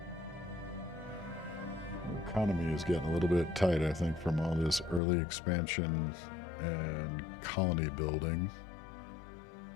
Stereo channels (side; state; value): right; drops out; at 5.0 s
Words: economy is getting a little bit tight, I think, from all this early expansion and colony building.